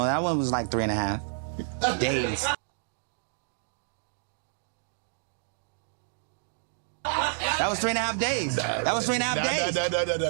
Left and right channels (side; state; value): left; silent; digital silence